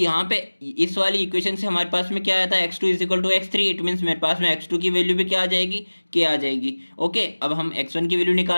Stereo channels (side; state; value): both; inverted; correlation -1.00